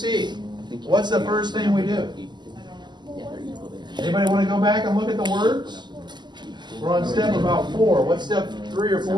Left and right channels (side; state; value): left; late; 0.21 ms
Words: What's the first thing we do? I don't know. Yeah, they're equal there. Anybody want to go back and look at the words? We're on step about 4. What's step 3 or